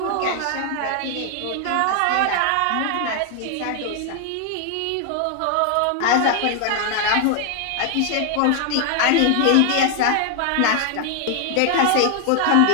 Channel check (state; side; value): different; both; correlation 0.00